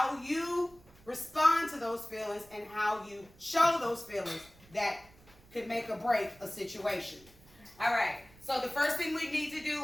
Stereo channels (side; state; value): right; noise; rumble, 26 dB below the sound